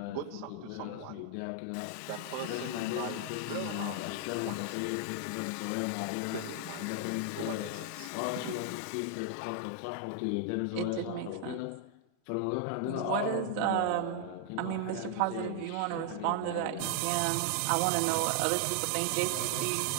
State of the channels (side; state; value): both; different; correlation 0.00